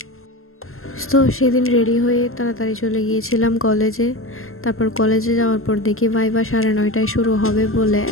তো সেদিন রেডি হয়ে তাড়াতাড়ি চলে গিয়েছিলাম কলেজে। তারপর কলেজে যাওয়ার পর দেখি ভাইভা 9:30টায় শুরু হবে বলে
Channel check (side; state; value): right; late; 0.62 ms